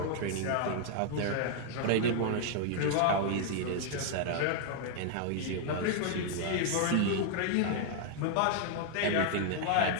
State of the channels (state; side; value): different; both; correlation -0.01